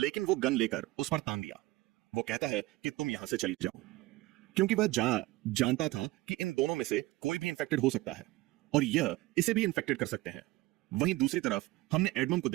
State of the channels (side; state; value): left; quieter; 19.2 dB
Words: वो गन लेकर उस पर तान दिया। वो कहता है कि तुम यहां से चली जाओ, क्योंकि वह जानता था कि इन दोनों में से कोई भी इन्फेक्टेड हो सकता है और यह इसे भी इन्फेक्टेड कर सकते हैं। वहीं दूसरी तरफ हमने एडमम को